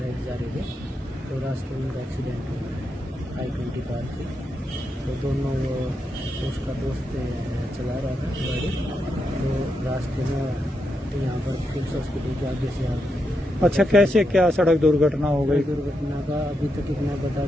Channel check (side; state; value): both; normal; correlation 0.84